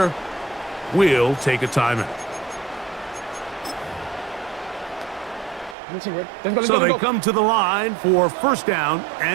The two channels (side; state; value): left; drops out; at 5.8 s